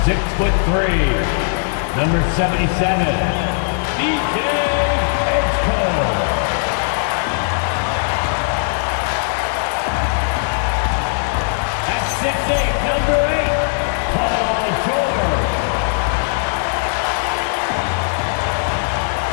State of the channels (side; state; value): right; silent; digital silence